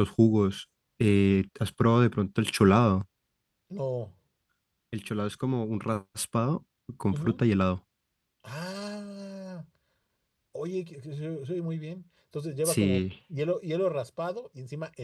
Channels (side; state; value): both; identical; correlation 1.00